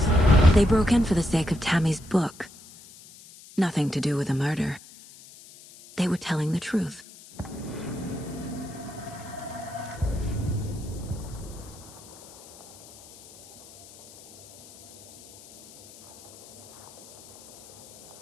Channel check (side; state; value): left; noise; hiss, 20 dB below the sound